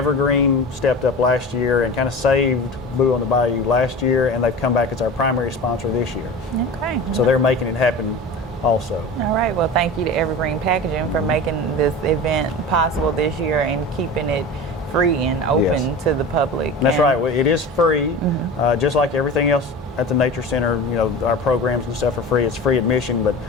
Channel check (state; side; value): normal; both; correlation 0.32